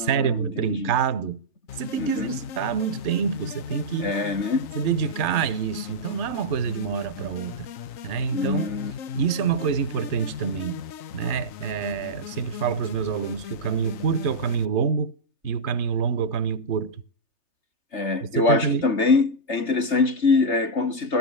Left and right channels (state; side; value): late; right; 3.3 ms